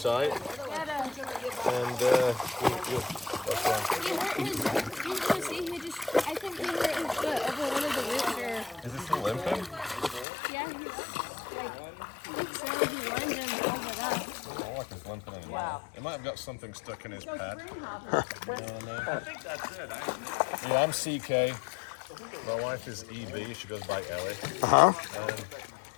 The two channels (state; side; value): drops out; right; at 10.2 s